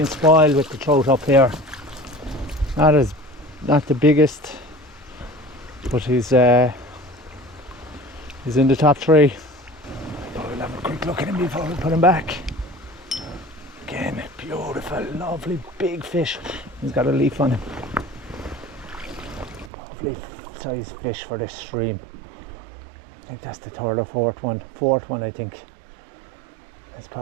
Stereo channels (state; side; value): drops out; left; at 19.7 s